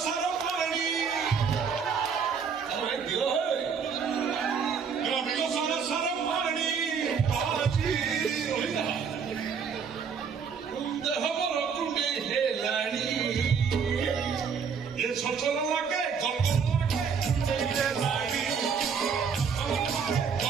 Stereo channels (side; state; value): left; quieter; 6.3 dB